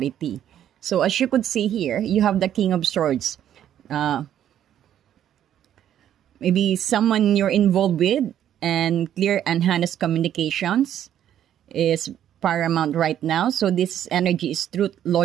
So as you could see here, you have the King of Swords. Uh, Maybe someone you're involved with, and clear and honest communications is paramount right now. So this energy is truth,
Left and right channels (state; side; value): quieter; left; 10.6 dB